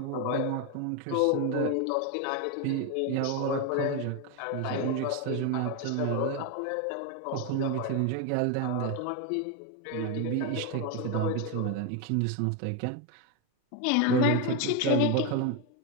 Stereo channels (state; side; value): different; both; correlation 0.02